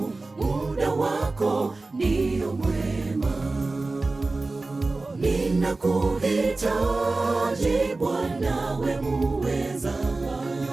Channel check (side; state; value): left; quieter; 3.4 dB